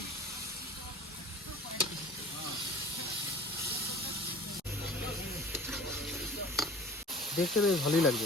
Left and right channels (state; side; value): normal; both; correlation 0.43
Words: দেখতে তো ভালোই